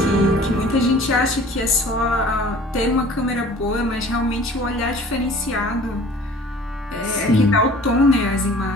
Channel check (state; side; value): normal; both; correlation 0.47